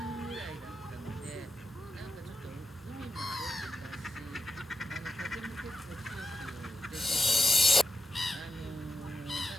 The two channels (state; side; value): normal; both; correlation 0.86